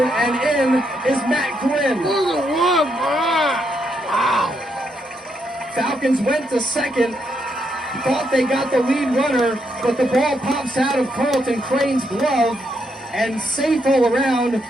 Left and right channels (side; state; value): both; normal; correlation 0.78